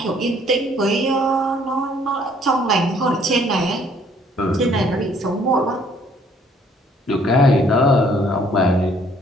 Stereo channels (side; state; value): both; normal; correlation 0.61